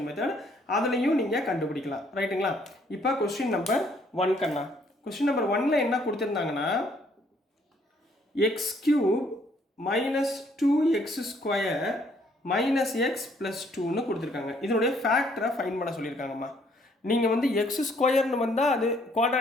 மெத்தட், அதுலேயும் நீங்கள் கண்டுபிடிக்கலாம். ரைட்டுங்களா? இப்போ கொஸ்டின் நம்பர் 1 கண்ணா. கொஸ்டின் நம்பர் 1ல் என்ன கொடுத்துருந்தாங்கன்னா x cube minus 2x square minus x plus 2ன்னு கொடுத்துருக்காங்க. இதனுடைய ஃபேக்டரை ஃபைன் பண்ண சொல்லியிருக்காங்கம்மா. நீங்கள் வந்து எக்ஸ் ஸ்கொயர்னு வந்தால் அது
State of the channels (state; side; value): normal; both; correlation 0.66